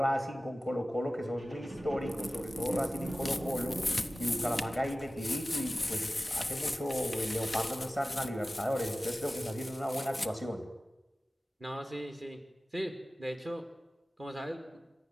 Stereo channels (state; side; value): normal; both; correlation 0.96